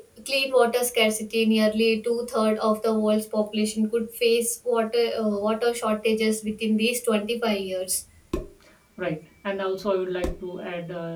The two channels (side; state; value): both; identical; correlation 1.00